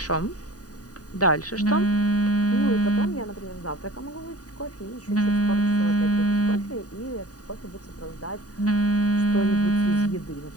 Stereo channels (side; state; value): right; late; 0.68 ms